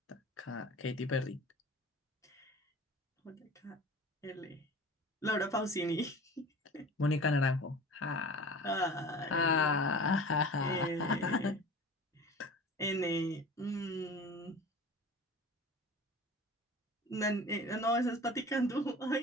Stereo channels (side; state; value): both; normal; correlation 0.39